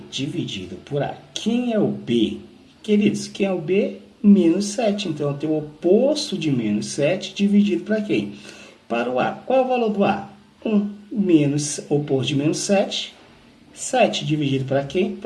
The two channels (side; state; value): both; identical; correlation 1.00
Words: dividido por A. Quem é o B? Queridos, quem é o B? Menos 7. Então, eu tenho o oposto de menos 7 dividido para quem? Para o A. Qual é o valor do A? 1. Menos oposto de menos 7. 7 dividido para quem?